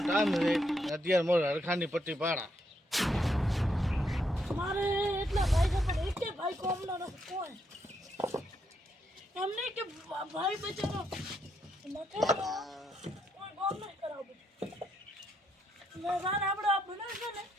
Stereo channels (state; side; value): normal; both; correlation 0.77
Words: ટાઈમ છે અત્યારે મોર હરખાની પટ્ટી પાડા મારે એટલા ભાઈ છે પણ એક ભાઈ કોમનો નથી કોઈ એમને કે ભાઈ બચારો નથી કોઈ કોમ નહીં કરાવું મેં રાન આપણે આ બનાવશે ને